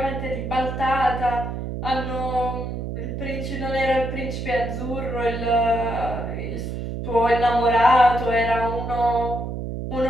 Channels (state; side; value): noise; right; hum, 5 dB below the sound